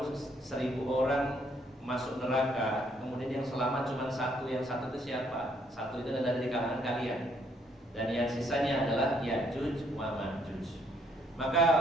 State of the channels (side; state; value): both; normal; correlation 0.68